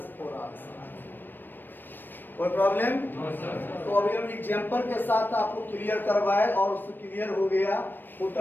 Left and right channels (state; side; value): late; right; 0.093 ms